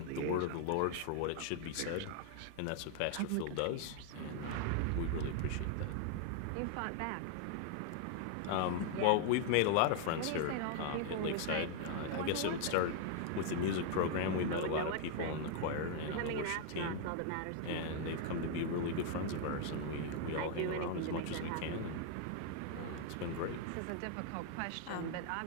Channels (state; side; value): different; both; correlation 0.00